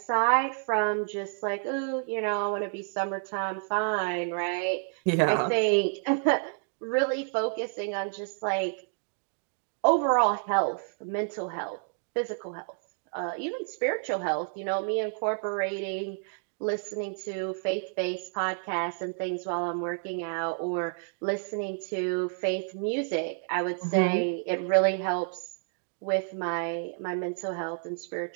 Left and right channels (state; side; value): silent; left; 58 dB below the other